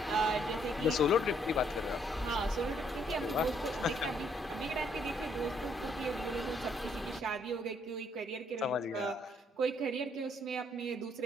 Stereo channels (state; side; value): normal; both; correlation 0.69